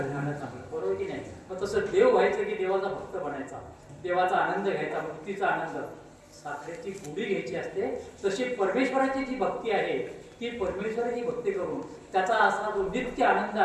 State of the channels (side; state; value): both; identical; correlation 1.00